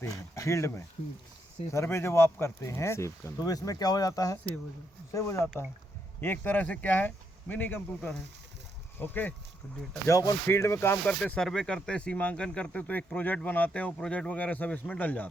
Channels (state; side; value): normal; both; correlation 0.78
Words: हैं फील्ड में, सर्वे जब आप करते हैं तो इसमें क्या हो जाता है, सेव हो जाता है। ये एक तरह से क्या है, मिनी कंप्यूटर है। ओके, जब अपन फील्ड में काम करते, सर्वे करते, सीमांकन करते तो एक प्रोजेक्ट बनाते हैं, वो प्रोजेक्ट वगैरह सब इसमें डल